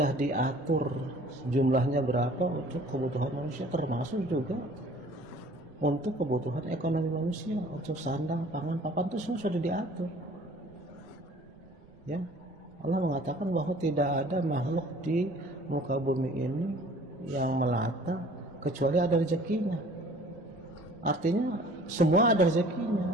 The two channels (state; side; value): noise; right; rumble, 27 dB below the sound